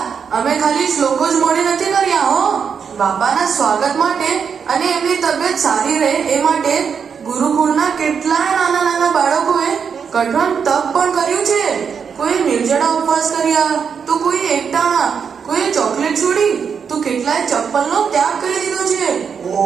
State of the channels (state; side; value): quieter; left; 6.6 dB